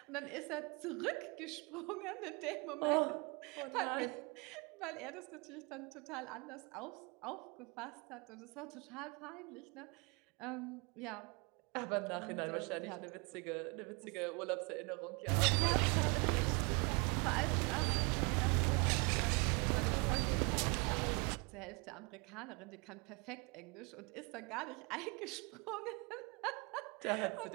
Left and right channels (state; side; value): quieter; left; 30.2 dB